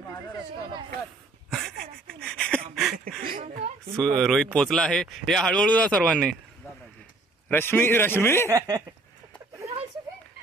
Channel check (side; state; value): left; quieter; 3.1 dB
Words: रोहित पोचला आहे. या हळूहळू जा सर्वांनी. रश्मी रश्मी